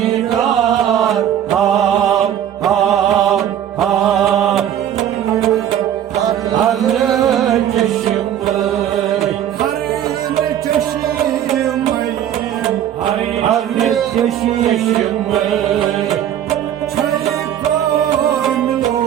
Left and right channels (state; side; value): quieter; left; 10.4 dB